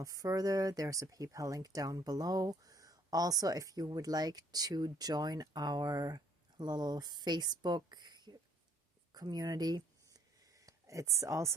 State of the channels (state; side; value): normal; both; correlation 0.62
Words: further, there's a PayPal link down below. Also, if you would like to join our little Facebook community, it's